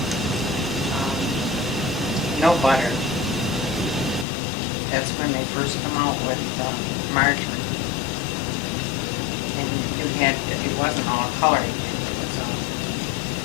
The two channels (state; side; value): drops out; right; at 4.2 s